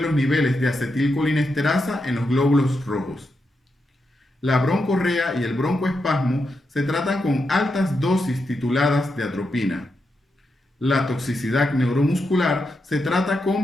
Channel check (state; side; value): normal; both; correlation 0.85